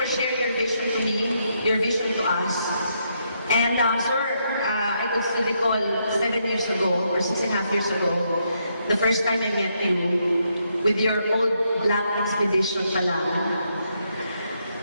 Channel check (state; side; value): inverted; both; correlation -0.77